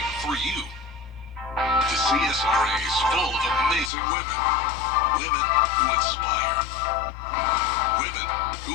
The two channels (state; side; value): drops out; right; at 3.9 s